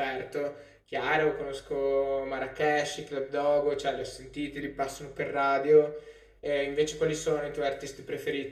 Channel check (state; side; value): identical; both; correlation 1.00